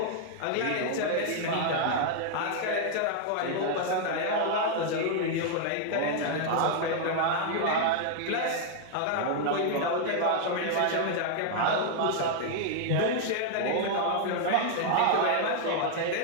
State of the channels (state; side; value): different; both; correlation 0.00